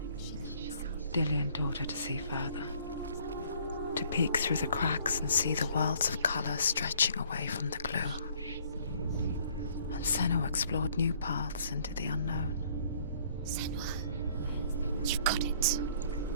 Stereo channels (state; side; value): inverted; both; correlation -0.60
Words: Dillian taught her to see further. To peek through the cracks and see the worlds of colour stretching away from the gloom. And Senua explored new paths into the unknown. Senua. You've got it.